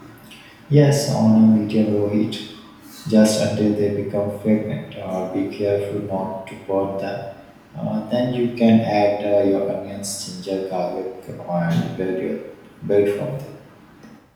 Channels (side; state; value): both; identical; correlation 1.00